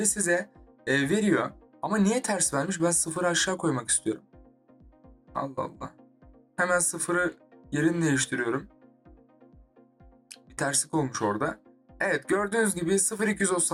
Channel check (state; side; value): identical; both; correlation 1.00